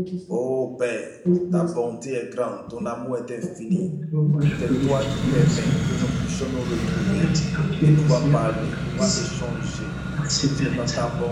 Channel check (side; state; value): both; identical; correlation 1.00